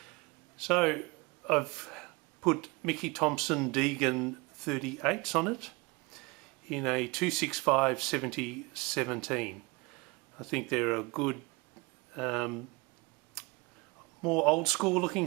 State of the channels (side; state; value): left; quieter; 25.8 dB